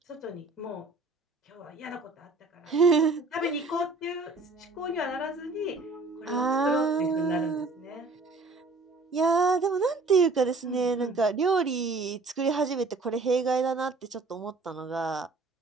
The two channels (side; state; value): left; quieter; 3.6 dB